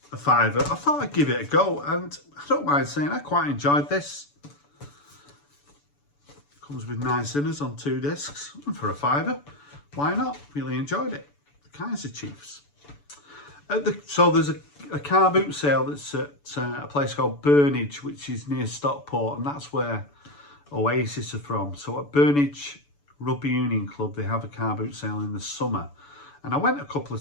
a £5, I thought I'd give it a go. And I don't mind saying I quite enjoyed this. Comes with 9 sinners on 2 discs. And for a £5, why not? Really enjoyed it. The Kaiser Chiefs. So there's a car boot sale that's at a place called Burnage, which is near Stockport, and that's where Oasis are from. So at Burnage Rugby Union Club, they have a car boot sale in the summer. And I went a couple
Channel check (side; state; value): right; late; 6.9 ms